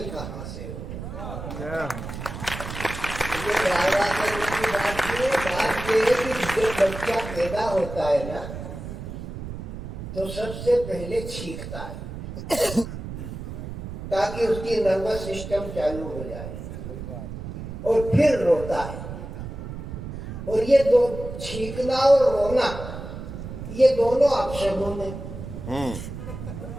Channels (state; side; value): noise; right; rumble, 9 dB below the sound